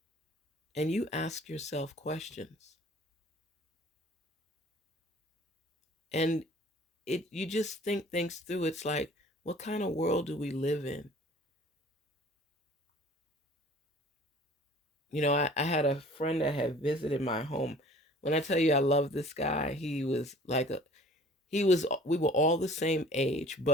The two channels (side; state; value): both; normal; correlation 0.49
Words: And you ask yourself questions. And you just think things through. It's like, what kind of world do we live in? You know, I had a friend that had visited my home. When I tell you I love this guy, we were all the same age,